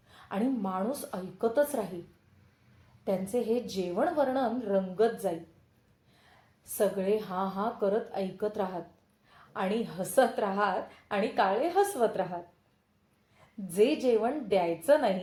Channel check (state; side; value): identical; both; correlation 1.00